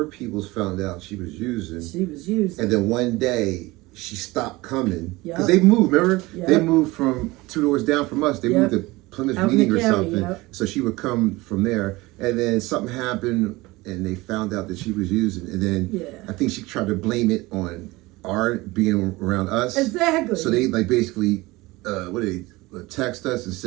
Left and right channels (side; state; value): left; quieter; 21.1 dB